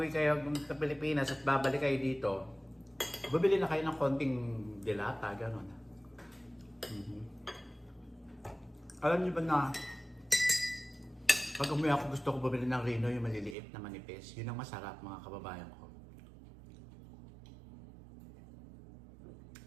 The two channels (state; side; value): drops out; left; at 13.6 s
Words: kayo sa Pilipinas at babalik kayo dito, bibili na kayo ng konting dilata, gano'n. Alam niyo ba na, pag umuwi ako gusto ko bumili ng Rino, yung maliliit na manipis. Yun ang masarap, mga kababayan ko.